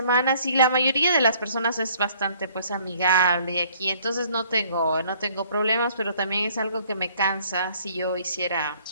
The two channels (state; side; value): inverted; both; correlation -0.59